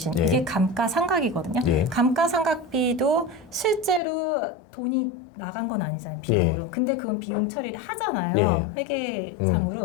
예. 이게 감가상각이거든요. 예. 감가상각비도 실제로 돈이 나간 건 아니잖아요, 비용으로. 예. 근데 그건 비용 처리를 하잖아요,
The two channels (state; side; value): drops out; right; at 4.0 s